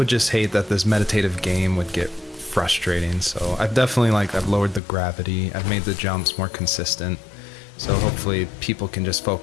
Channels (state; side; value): drops out; right; at 4.8 s